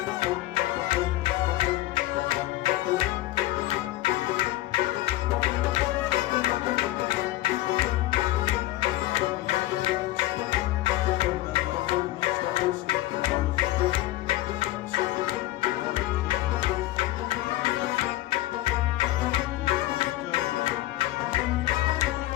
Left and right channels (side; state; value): right; quieter; 16.5 dB